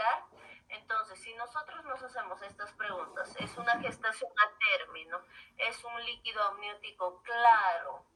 Entonces, si nosotros nos hacemos estas preguntas, ¿es una gestación a término? ¿Es un líquido amniótico claro?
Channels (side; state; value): both; identical; correlation 1.00